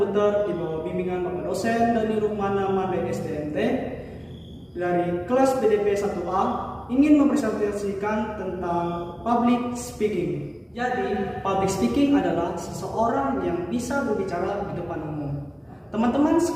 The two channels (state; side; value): identical; both; correlation 1.00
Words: di bawah bimbingan Bapak dosen Dani Rukmana Made SDMT dari kelas BDP 1A ingin mempresentasikan tentang public speaking. Jadi, public speaking adalah seseorang yang bisa berbicara di depan umum. Teman-teman